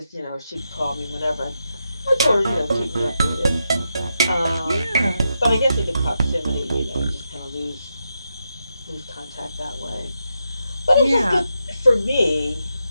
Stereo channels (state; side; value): inverted; both; correlation -0.86